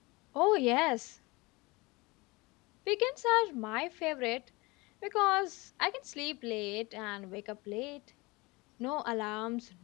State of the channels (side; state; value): right; quieter; 24.1 dB